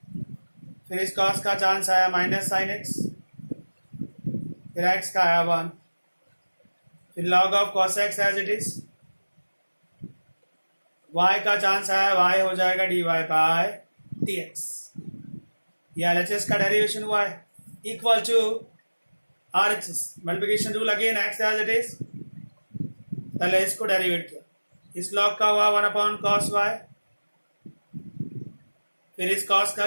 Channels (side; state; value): both; inverted; correlation -1.00